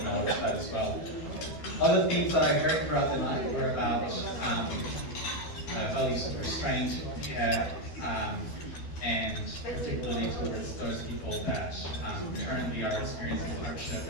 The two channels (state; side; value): late; right; 12 ms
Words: that as well. Other themes that I heard throughout the night were about values of restraint, care, and particularly towards those people that currently are experiencing hardship.